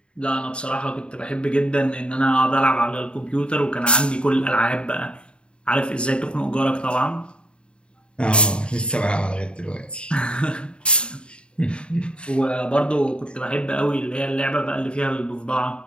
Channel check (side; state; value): right; late; 0.053 ms